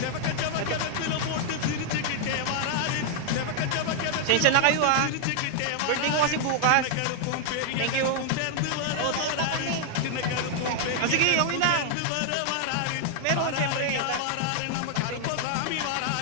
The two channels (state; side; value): different; both; correlation 0.00